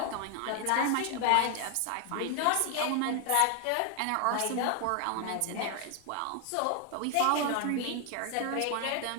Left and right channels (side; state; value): both; different; correlation 0.00